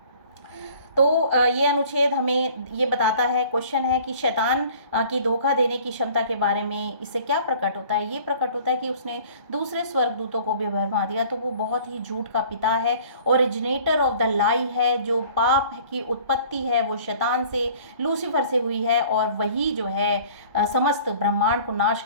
तो ये अनुच्छेद हमें ये बताता है, क्वेश्चन है कि शैतान की धोखा देने की क्षमता के बारे में इससे क्या प्रकट होता है? ये प्रकट होता है कि उसने दूसरे स्वर्गदूतों को भी भरमा दिया। तो वो बहुत ही झूठ का पिता है, ओरिजिनेटर ऑफ द लाई है। जो पाप की उत्पत्ति है वो शैतान से, लूसीफर से हुई है, और वही जो है समस्त ब्रह्मांड को नाश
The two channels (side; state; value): both; inverted; correlation -0.50